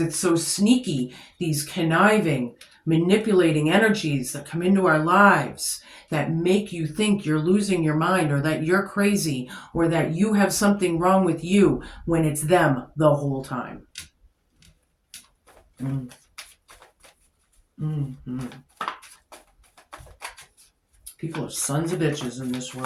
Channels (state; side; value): identical; both; correlation 1.00